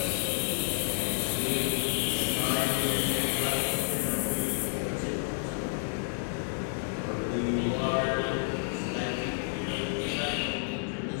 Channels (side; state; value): right; silent; 58 dB below the other